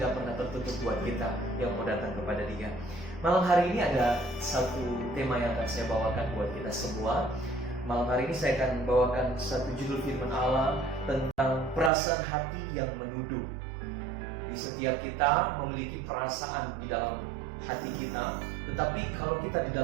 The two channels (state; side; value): drops out; left; at 11.9 s